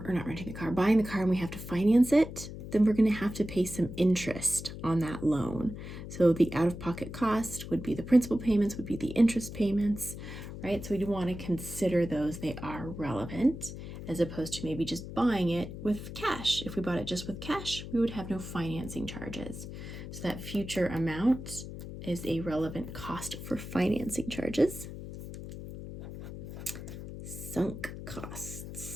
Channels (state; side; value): noise; left; hum, 10 dB below the sound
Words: buying the car and we have to finance it, then we're going to have to pay some interest on that loan. So the out-of-pocket cost would be the principal payments, would be the interest payments, right? So we do want to consider those. They are relevant, as opposed to maybe just buying it with cash. If we bought it just with cash, we would have no financing charges. So that future amount is a relevant cost for financing charges. Sunk